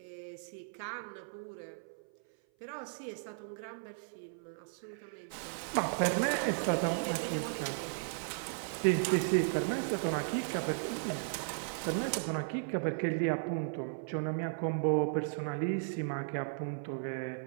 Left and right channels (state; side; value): silent; left; 54 dB below the other